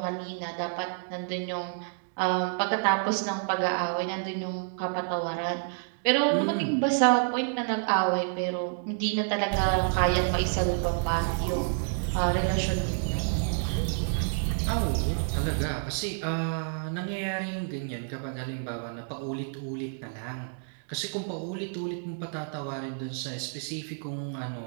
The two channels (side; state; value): left; silent; digital silence